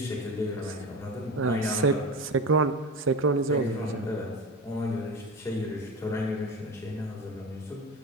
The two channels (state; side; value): normal; both; correlation 0.27